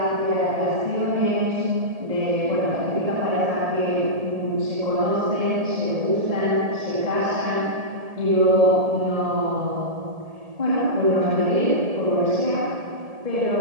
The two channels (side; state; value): left; late; 1.7 ms